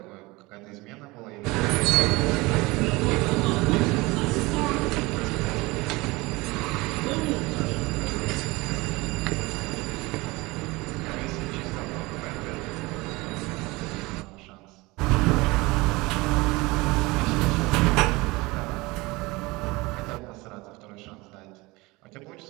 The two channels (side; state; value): left; quieter; 22.8 dB